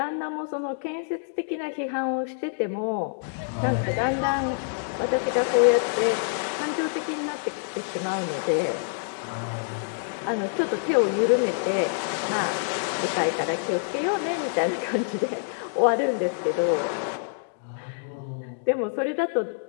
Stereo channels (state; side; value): silent; right; digital silence